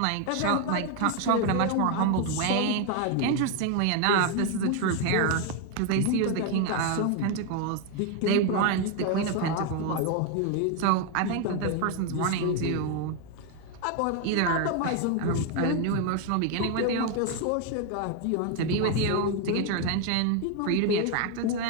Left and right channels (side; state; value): both; different; correlation 0.01